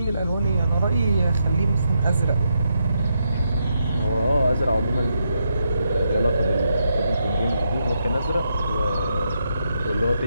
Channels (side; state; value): both; inverted; correlation -0.82